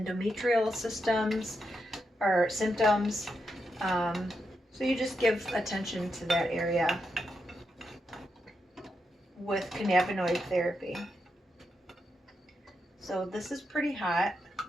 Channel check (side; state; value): both; normal; correlation 0.84